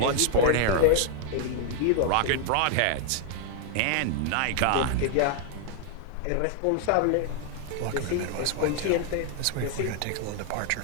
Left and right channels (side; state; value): both; different; correlation 0.00